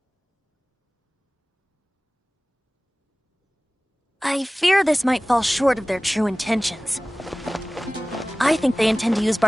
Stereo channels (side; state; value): both; normal; correlation 0.98